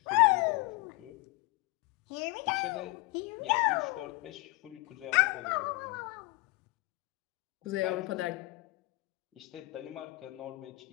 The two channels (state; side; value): quieter; right; 23.1 dB